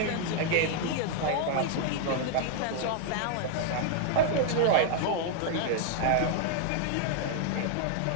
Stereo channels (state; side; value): different; both; correlation 0.00